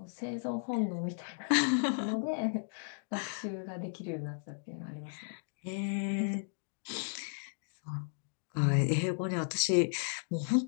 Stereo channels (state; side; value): silent; right; digital silence